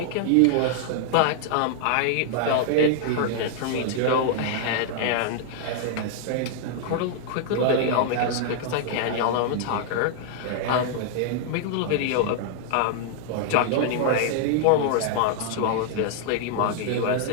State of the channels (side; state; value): both; different; correlation -0.01